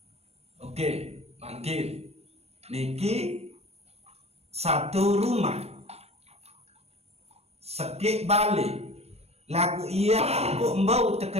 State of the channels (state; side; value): late; left; 0.31 ms